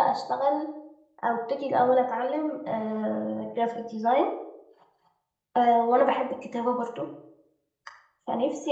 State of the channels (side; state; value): both; identical; correlation 1.00